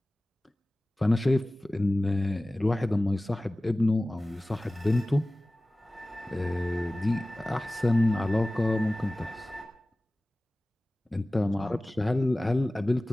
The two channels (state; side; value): normal; both; correlation 0.97